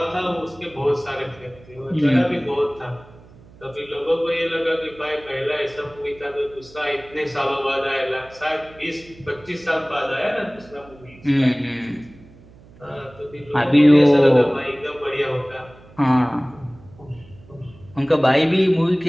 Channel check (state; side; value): noise; right; hum, 23 dB below the sound